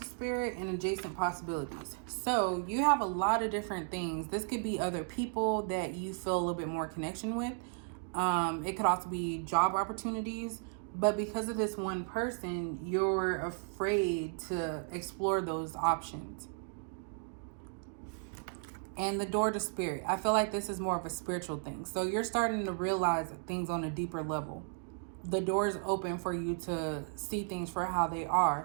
spirit and adjacent possibilities. So you have a lot of different things. This could be other people that you feel a little bit more connection with. It could also be job opportunities. But because of this one person, you're afraid to explore those options. And the door to spirit. I feel like this is more of a spiritual thing. So you're starting to realize things on a deeper level. The door is open for you to see things for how they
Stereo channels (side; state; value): left; silent; 55 dB below the other